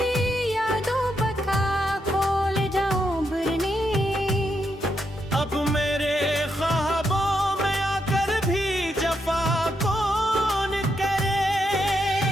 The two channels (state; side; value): normal; both; correlation 0.81